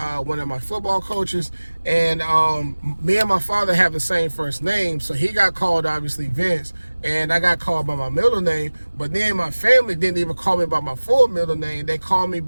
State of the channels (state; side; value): inverted; both; correlation -1.00